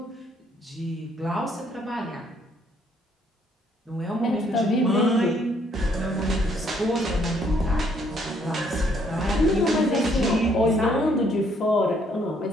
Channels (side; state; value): both; normal; correlation 0.67